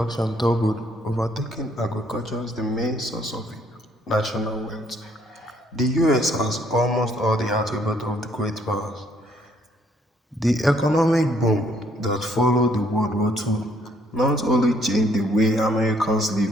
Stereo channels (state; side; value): normal; both; correlation 0.66